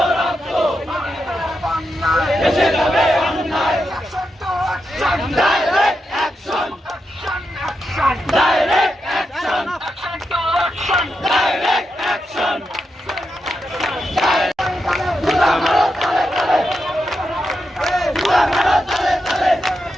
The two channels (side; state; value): both; normal; correlation 0.86